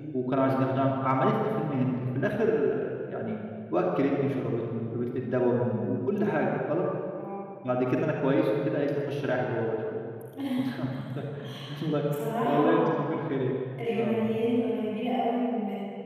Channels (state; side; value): identical; both; correlation 1.00